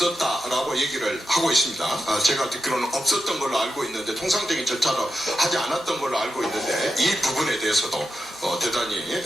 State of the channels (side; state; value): both; normal; correlation 0.88